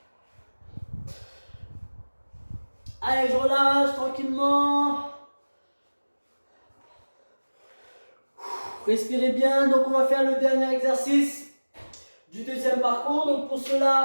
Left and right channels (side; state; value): both; inverted; correlation -1.00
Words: Allez, je relâche tranquillement. Respirez bien. Donc, on va faire le dernier exercice du deuxième parcours. Donc, pour